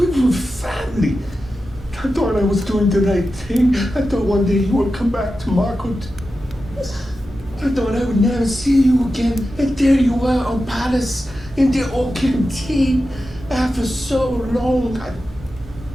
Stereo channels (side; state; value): both; normal; correlation 0.92